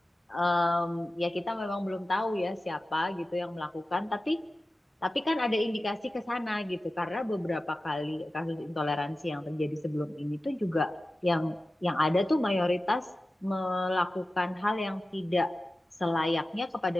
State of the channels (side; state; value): both; normal; correlation 0.95